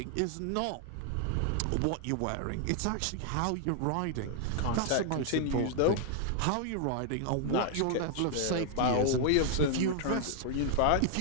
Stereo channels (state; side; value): different; both; correlation 0.00